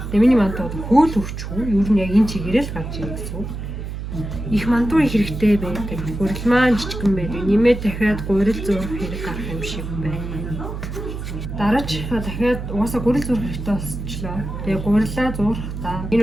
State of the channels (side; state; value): right; noise; hum, 7 dB below the sound